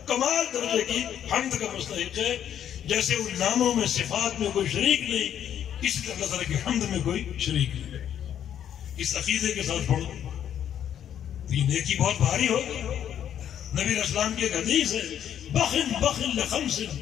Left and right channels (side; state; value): right; quieter; 9.8 dB